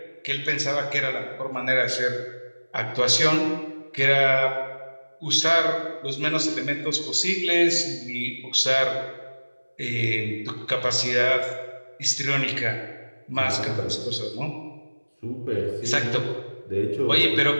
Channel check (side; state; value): both; inverted; correlation -1.00